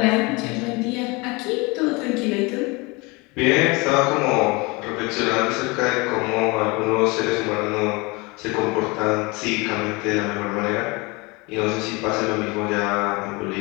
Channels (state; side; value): quieter; right; 26.2 dB